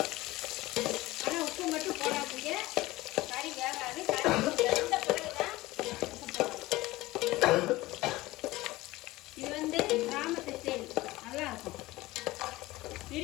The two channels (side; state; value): right; quieter; 18.9 dB